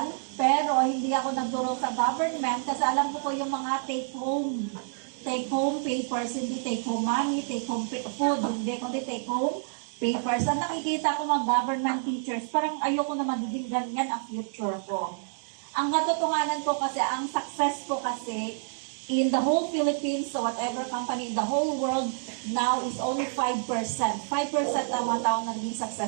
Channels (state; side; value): silent; left; digital silence